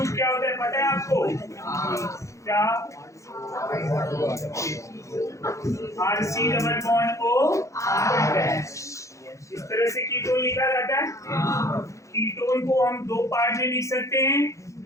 क्या होता है पता है आपको? क्या? RC double bond O R'। इस तरह से कीटोन लिखा जाता है। कीटोन को हम दो पार्ट में लिख सकते हैं।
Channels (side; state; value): right; late; 0.15 ms